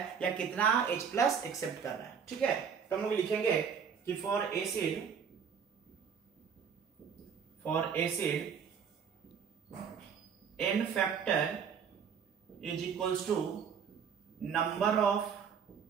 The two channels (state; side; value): quieter; left; 7.0 dB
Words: या कितना H+ एक्सेप्ट कर रहा है, ठीक है। तो हम लोग लिखेंगे कि for acid n factor is equals to number of